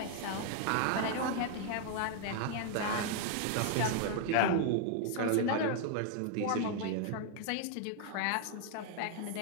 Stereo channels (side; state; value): both; different; correlation 0.00